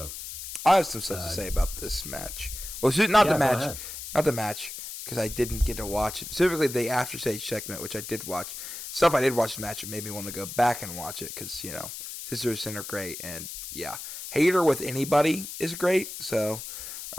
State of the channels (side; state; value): left; noise; hiss, 9 dB below the sound